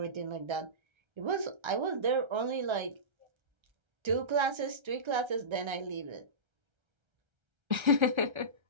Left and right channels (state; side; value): late; left; 1.3 ms